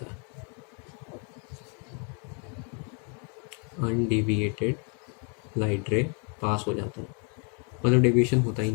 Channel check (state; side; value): quieter; right; 38.3 dB